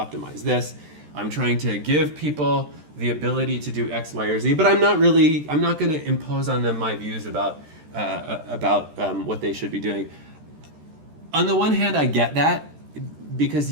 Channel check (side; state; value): left; late; 13 ms